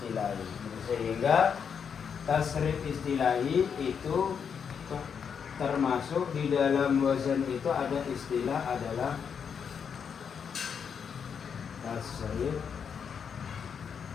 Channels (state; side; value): quieter; right; 6.9 dB